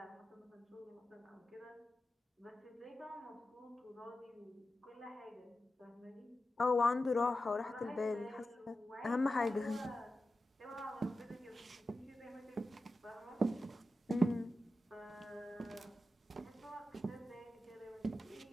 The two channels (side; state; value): both; normal; correlation 0.92